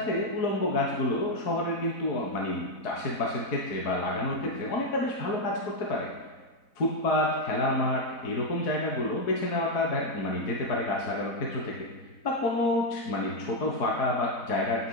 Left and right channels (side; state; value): right; late; 4.1 ms